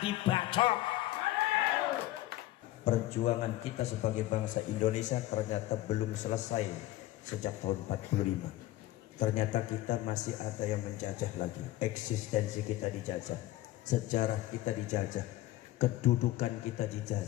Perjuangan kita sebagai bangsa Indonesia ternyata belum selesai sejak tahun 45. Ternyata kita masih ada yang menjajah lagi. Eksistensi kita dijajah, sejarah kita dijajah, kedudukan kita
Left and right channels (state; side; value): quieter; right; 15.9 dB